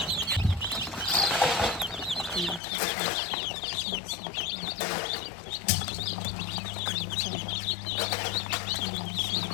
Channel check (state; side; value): drops out; right; at 2.6 s